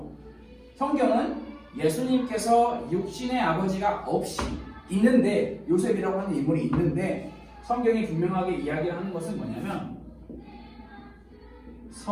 성경은 예수님께서 육신의 아버지가 없이 있는데, 요셉이라고 하는 인물이 있는데, 성경이 분명하게 이야기를 하는 것은 뭐냐면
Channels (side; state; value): both; identical; correlation 1.00